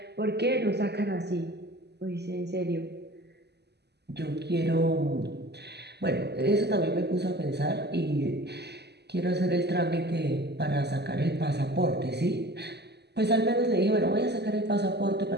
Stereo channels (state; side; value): late; left; 0.49 ms